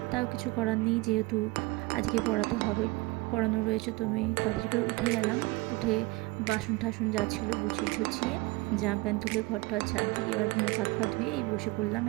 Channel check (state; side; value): quieter; left; 23.2 dB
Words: তাও কিছু করার নেই, যেহেতু আজকে পড়াতে হবে, পড়ানো রয়েছে। তো আমি তাড়াতাড়ি করে উঠে গেলাম, উঠে বাসন টাসন যা ছিল গুছিয়ে টুছিয়ে জামা প্যান্ট তুলে ঘরটা ঝাড় দিয়ে এবার মুখ হাত পা ধুয়ে এই বসে পড়লাম।